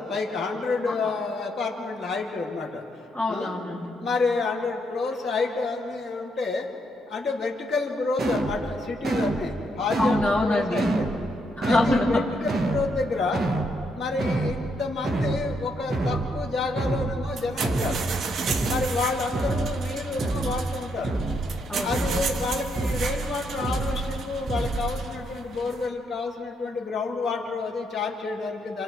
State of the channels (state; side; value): normal; both; correlation 0.76